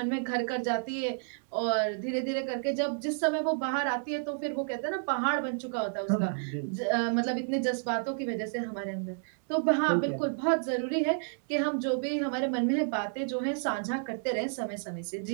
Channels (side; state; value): left; silent; digital silence